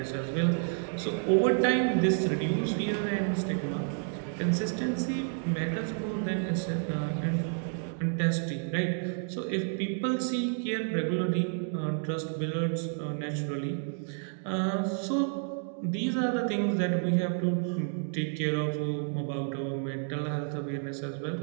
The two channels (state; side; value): silent; left; 56 dB below the other